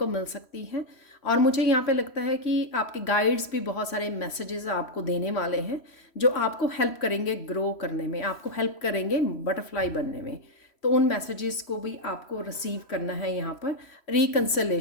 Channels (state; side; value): late; right; 3.1 ms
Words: मिल सकती है। और मुझे यहाँ पे लगता है कि आपके गाइड्स भी बहुत सारे मैसेजेस आपको देने वाले हैं जो आपको हेल्प करेंगे ग्रो करने में, आपको हेल्प करेंगे बटरफ्लाई बनने में। तो उन मैसेजेस को भी आपको रिसीव करना है यहाँ पर।